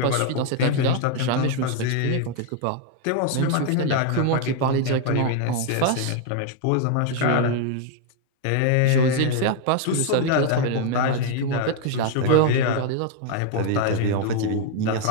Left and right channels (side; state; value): both; different; correlation 0.00